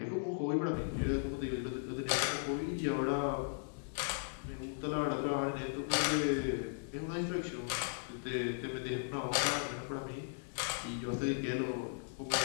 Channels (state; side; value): silent; right; digital silence